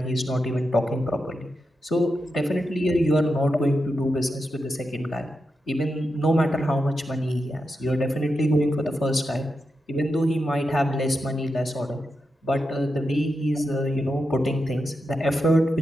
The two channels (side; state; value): both; normal; correlation 0.88